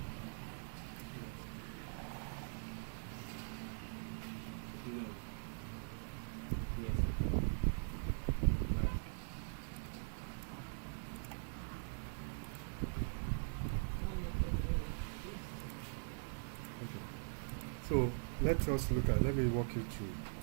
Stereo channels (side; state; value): left; silent; digital silence